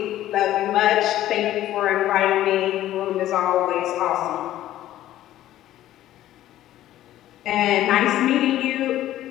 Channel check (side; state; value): right; quieter; 13.5 dB